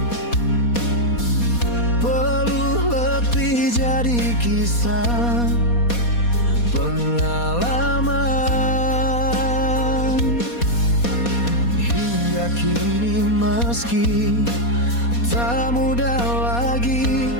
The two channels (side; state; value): right; late; 4.2 ms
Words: peluh letih jadi kisah pengalaman. Hingga kini meski tak mudah lagi,